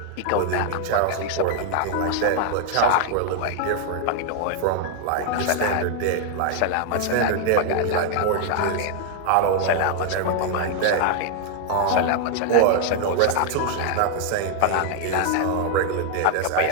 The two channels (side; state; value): both; different; correlation 0.00